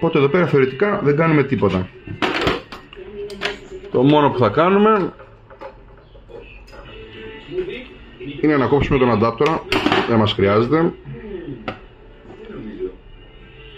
εδώ πέρα θεωρητικά δεν κάνουμε τίποτα. Το μόνο που θα κάνουμε είναι να κόψουμε τον αντάπτορα. Δεν μας χρειάζεται.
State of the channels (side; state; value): both; identical; correlation 1.00